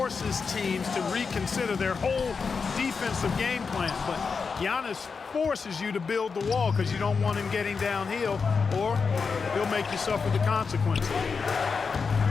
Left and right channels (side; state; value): right; quieter; 5.2 dB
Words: teams to reconsider their whole defensive game plan, but Giannis forces you to build the wall because you don't want him getting downhill, or he'll make you suffer the consequences.